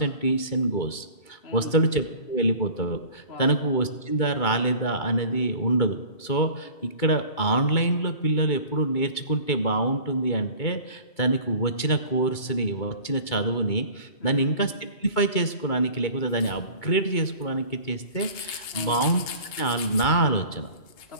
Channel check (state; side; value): late; right; 2.2 ms